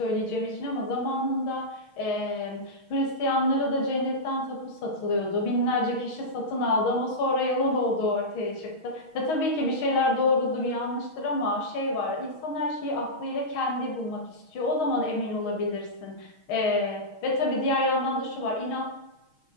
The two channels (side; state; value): right; late; 6.3 ms